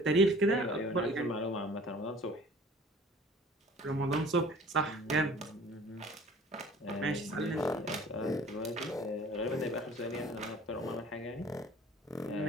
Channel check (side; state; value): both; normal; correlation 0.48